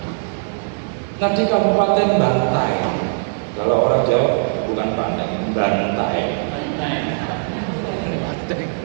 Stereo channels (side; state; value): left; silent; digital silence